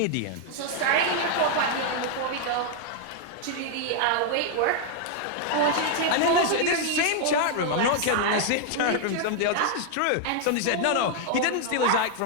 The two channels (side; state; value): both; different; correlation 0.00